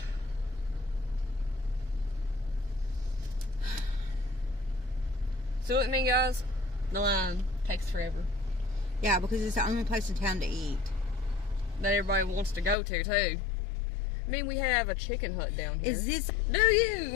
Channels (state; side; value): drops out; right; at 12.8 s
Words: See what I mean, guys? The line takes forever. Yeah, because it's the only place in town to eat. That everybody wants to go to, too. I mean, we have a chicken hut down here. Is this, Do